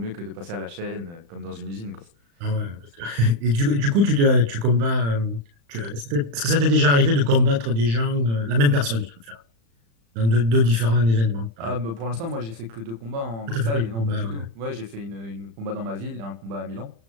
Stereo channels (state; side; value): late; left; 35 ms